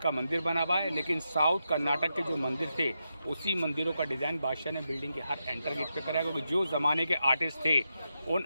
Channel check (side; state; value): both; inverted; correlation -0.86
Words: मंदिर बना हुआ है। लेकिन साउथ कर्नाटक के जो मंदिर थे, उसी मंदिरों का डिज़ाइन बादशाह ने बिल्डिंग के हर एंटर गेट पे कराया, क्योंकि जो ज़माने के आर्टिस्ट थे, उन